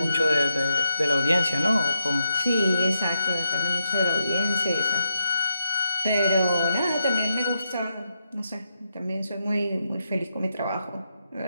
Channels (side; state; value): both; inverted; correlation -0.82